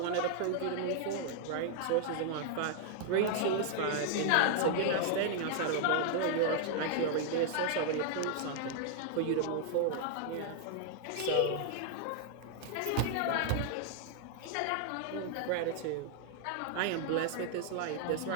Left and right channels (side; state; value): both; different; correlation 0.00